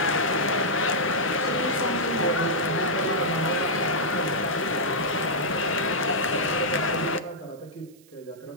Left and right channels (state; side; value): noise; right; hiss, 28 dB below the sound